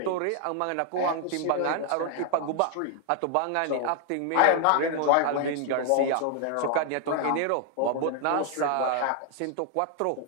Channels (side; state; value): both; different; correlation 0.00